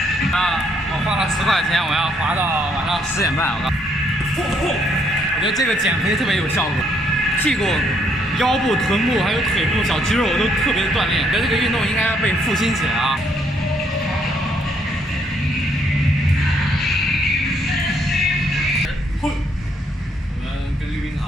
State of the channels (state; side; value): normal; both; correlation 0.70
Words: 我花了10块钱，我要滑到晚上10点半。我觉得这个减肥特别有效果，屁股、腰部、臀部还有腿部小肌肉都特别的锻炼。我觉得这个运动应该要被复兴起来啊！我们跟溜冰